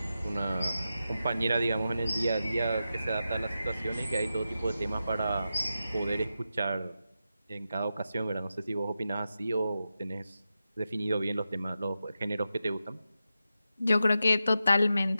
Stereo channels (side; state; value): both; inverted; correlation -0.90